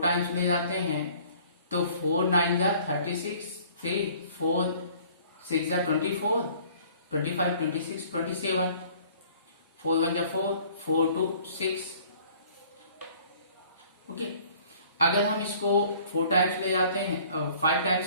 टाइम्स ले जाते हैं तो 4 9 जा 36 3 4 6 जा 24 25 26 27 4 1 जा 4 4 2 6। ओके, अगर हम इसको 4 टाइम्स ले जाते हैं 5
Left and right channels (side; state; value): both; inverted; correlation -0.54